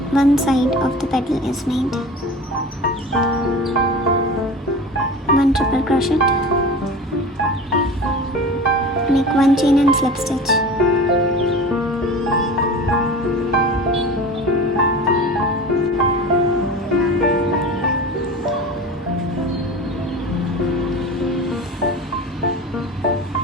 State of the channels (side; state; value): both; normal; correlation 0.35